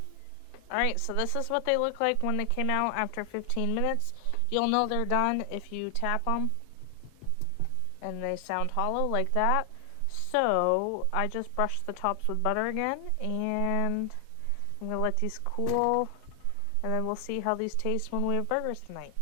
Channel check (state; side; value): different; both; correlation 0.00